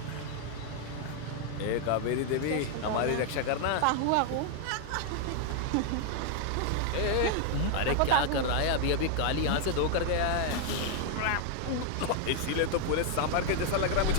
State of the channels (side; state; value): both; different; correlation 0.00